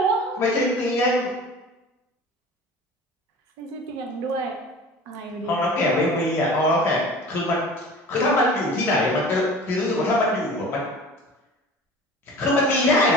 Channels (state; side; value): normal; both; correlation 0.40